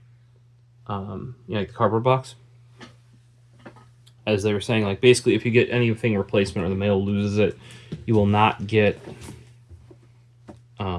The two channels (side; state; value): both; identical; correlation 1.00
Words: Like the cardboard box. As they were saying, like, basically if you get anything replacement or the mail loses it, you will not get